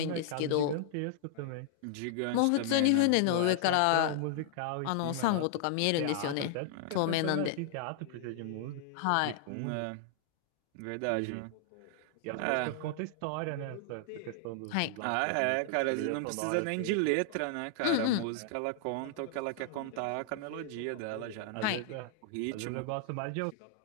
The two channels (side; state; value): both; different; correlation -0.01